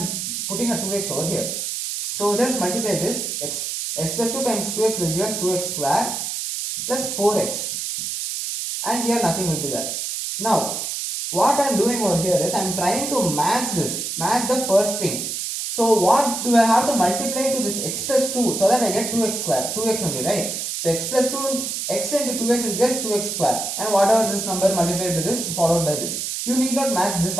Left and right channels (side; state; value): right; noise; hiss, 3 dB below the sound